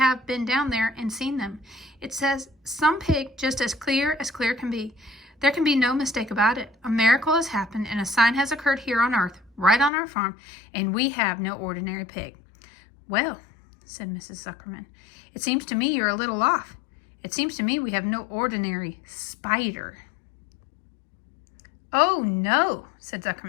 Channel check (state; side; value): drops out; right; at 9.9 s